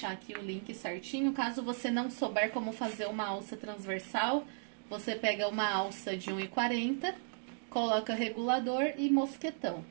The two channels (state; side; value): silent; left; digital silence